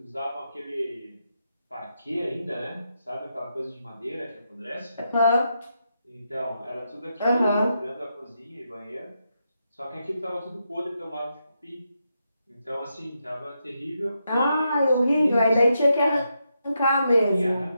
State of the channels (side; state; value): both; inverted; correlation -0.83